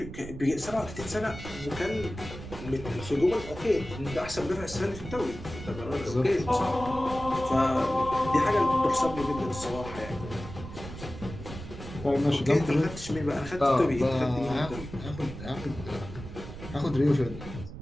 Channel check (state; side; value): noise; right; rumble, 11 dB below the sound